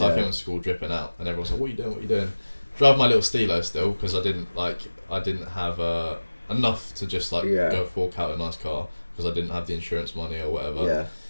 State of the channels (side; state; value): both; inverted; correlation -1.00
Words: I came to school dripping out, and everyone's like, what are you doing? Drive my little Stilo still, because I didn't have enough to just go fork out a nice car, because I didn't have the insurance money or whatever.